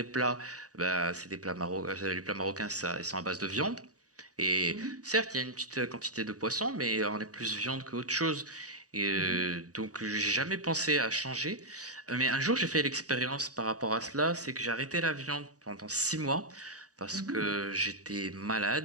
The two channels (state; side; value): late; left; 0.67 ms